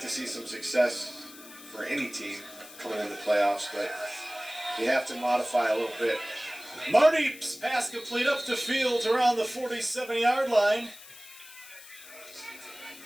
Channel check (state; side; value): noise; left; hiss, 18 dB below the sound